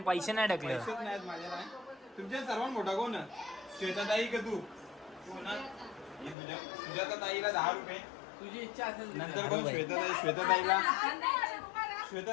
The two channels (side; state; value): right; drops out; at 6.4 s